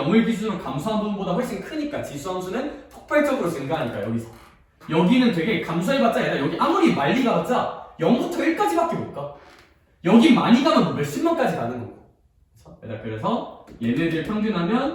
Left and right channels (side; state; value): both; identical; correlation 1.00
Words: 기준으로 감소한 부분보다 훨씬 크니까 지수함수는 폭발적으로 증가하니까 여기서. 여기는 되게 감소해봤자 얘들아, 여기 아무리 많이 가봤자 0부터 1까지밖에 못 가. 여기 많이 가면 뭐 몇십만까지 가는 거고. 그래서 얘네들